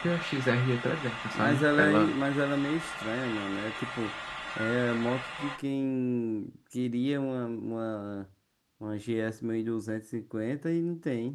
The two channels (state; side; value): identical; both; correlation 1.00